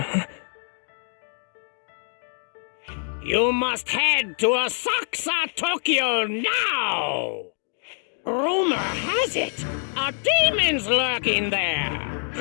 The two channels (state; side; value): silent; right; 58 dB below the other